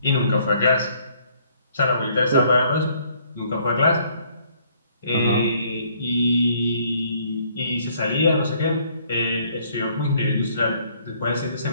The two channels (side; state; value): both; inverted; correlation -0.64